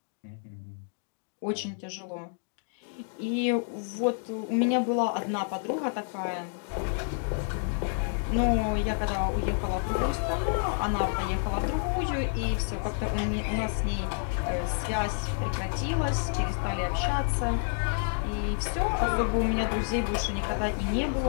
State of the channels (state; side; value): silent; right; 58 dB below the other